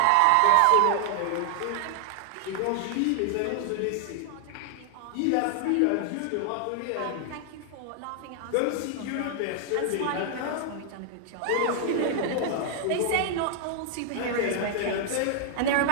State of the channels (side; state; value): both; different; correlation 0.00